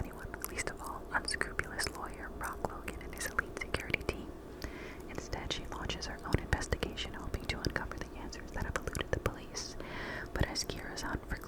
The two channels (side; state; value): both; identical; correlation 1.00